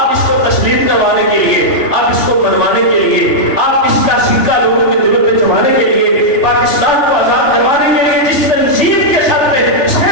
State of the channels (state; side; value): late; right; 3.4 ms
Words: اس کو تسلیم کروانے کے لیے، آپ اس کو منوانے کے لیے، آپ اس کا سکہ لوگوں کے دلوں پہ جمانے کے لیے، پاکستان کو آزاد کروانے کے لیے جس تنظیم کے سر پہ